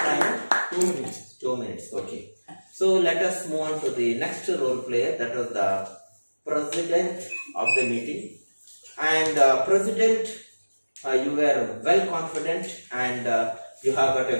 2 minutes. 2 minutes, okay. So, let us move on to the next role player, that was the president of the meeting. And president, you were well confident and you have got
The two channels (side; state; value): both; inverted; correlation -1.00